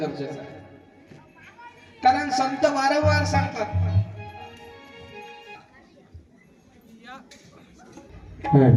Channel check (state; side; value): identical; both; correlation 1.00